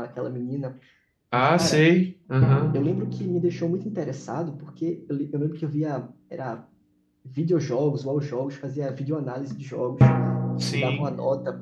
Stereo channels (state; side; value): identical; both; correlation 1.00